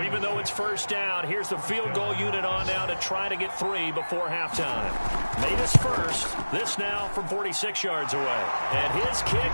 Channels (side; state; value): both; inverted; correlation -1.00